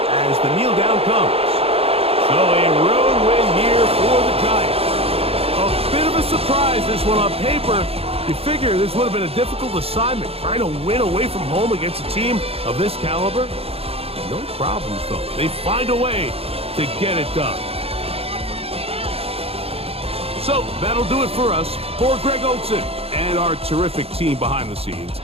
as the kneel down comes. So a road win here for the Giants. A bit of a surprise, this one on paper. You figure this would have been a difficult assignment, trying to win away from home against a team of this caliber. No problems, though. They find a way to get it done. So that'll do it for us. For Greg Olsen and our terrific team behind the scenes,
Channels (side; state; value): left; late; 0.28 ms